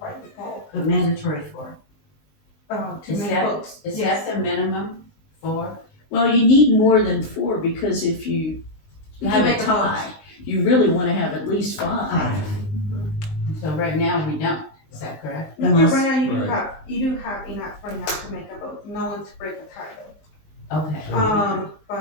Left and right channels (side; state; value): right; late; 20 ms